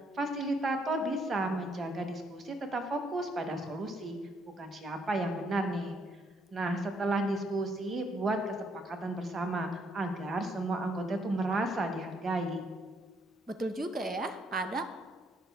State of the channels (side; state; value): both; normal; correlation 0.71